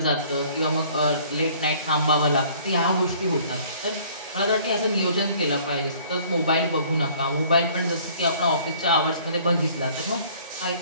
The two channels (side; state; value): both; inverted; correlation -0.55